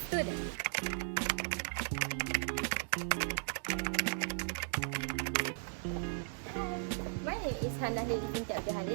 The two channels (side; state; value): left; silent; digital silence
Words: student. My name is Hannah Lili Binti Abdul